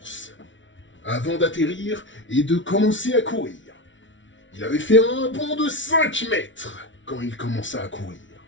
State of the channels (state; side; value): late; right; 0.55 ms